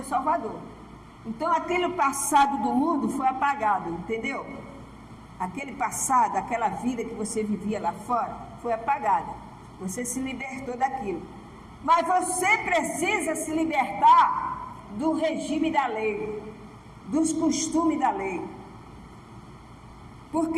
Salvador. Então, aquele passado do mundo foi apagado, entendeu? Aquele passado, aquela vida que você vivia lá fora, foi apagada. Você se libertou daquilo. Mas você precisa se libertar do regime da lei, dos costumes da lei.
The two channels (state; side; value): identical; both; correlation 1.00